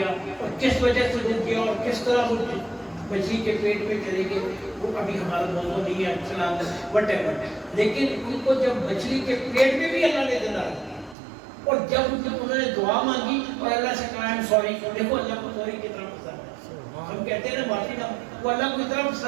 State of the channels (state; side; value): drops out; left; at 11.2 s